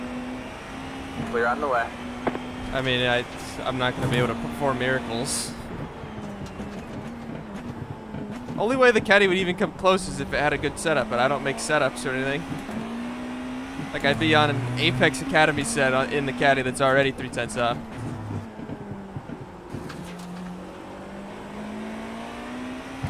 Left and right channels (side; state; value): both; identical; correlation 1.00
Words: Clear on the left. I mean, I'm not going to be able to perform miracles. Only way the caddy would even come close is if it had a good setup, but I don't make setups or anything. Like, I'd be on an Apex Academy set in the caddy that's already 3/10 off.